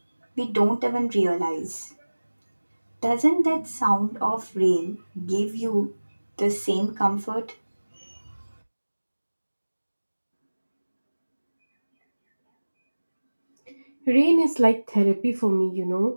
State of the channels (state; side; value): inverted; both; correlation -1.00